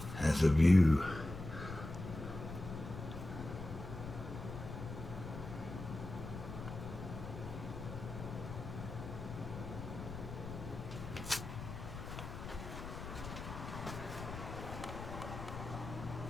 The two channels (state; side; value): noise; left; rumble, 8 dB below the sound